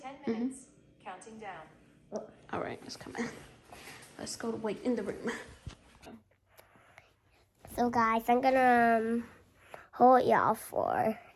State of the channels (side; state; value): both; identical; correlation 1.00